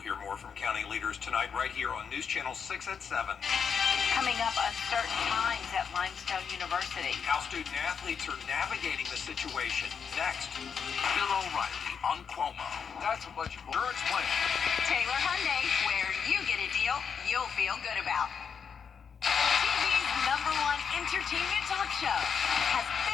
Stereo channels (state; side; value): quieter; right; 6.6 dB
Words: hear more from county leaders tonight right here on News Channel 6 at 7. Coming up, uncertain times at Limestone University. How student athletes are navigating the situation. Next. Bill O'Reilly on Cuomo. That's a bunch of insurance plan. Taylor Hyundai, where you get a deal you'll feel good about. TV's #1 entertainment talk show has